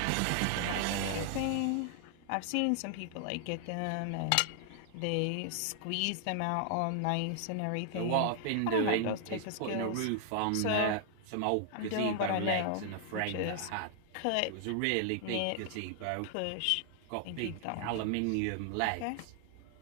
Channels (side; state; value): both; different; correlation 0.00